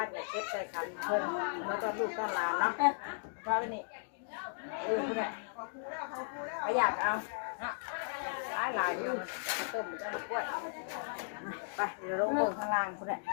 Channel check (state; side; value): silent; right; digital silence